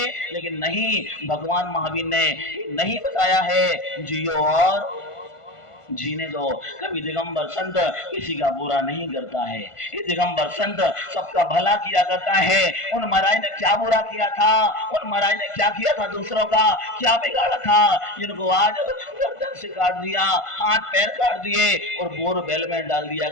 लेकिन नहीं, भगवान महावीर ने नहीं बताया है जियो और जीने दो। कभी दिगंबर संत किसी का बुरा नहीं करता है। ये दिगंबर संत सबका भला किया करता है। उन महाराज ने क्या बुरा किया था? उन महाराज ने क्या किया था? दूसरों का क्या बिगाड़ा था? जिनको आज गर्दन से काट दिया, हाथ पैर काट दिए और बोरवेल में डाल दिया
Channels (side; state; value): right; late; 1.5 ms